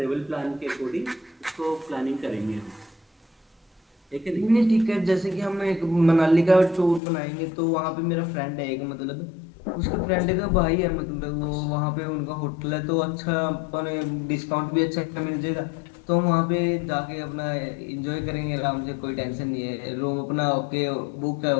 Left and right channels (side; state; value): right; drops out; at 7.0 s